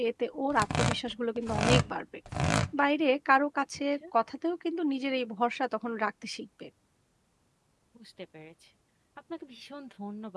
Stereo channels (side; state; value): both; identical; correlation 1.00